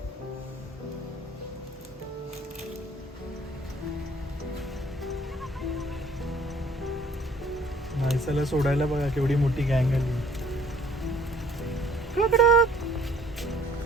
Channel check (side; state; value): both; normal; correlation 0.59